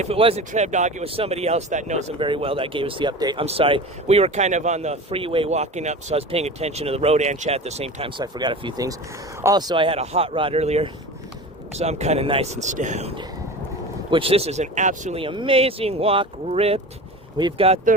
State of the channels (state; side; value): normal; both; correlation 0.33